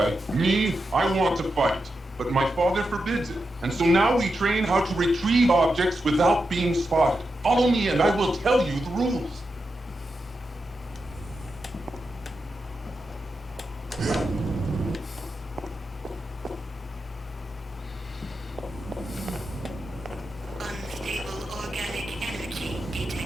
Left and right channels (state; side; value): normal; both; correlation 0.88